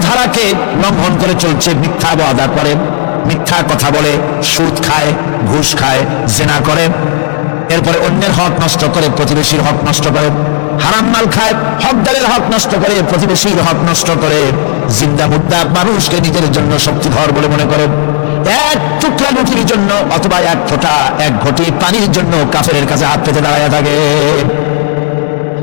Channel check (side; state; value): right; silent; digital silence